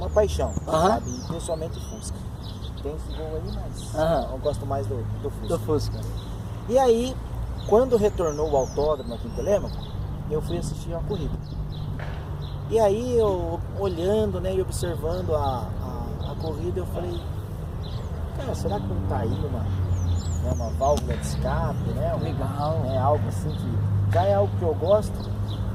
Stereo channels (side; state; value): both; identical; correlation 1.00